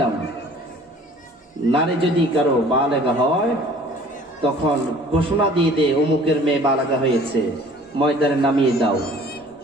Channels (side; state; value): both; normal; correlation 0.50